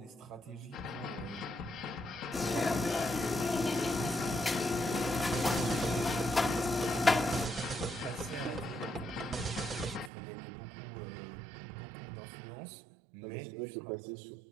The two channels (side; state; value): left; drops out; at 10.1 s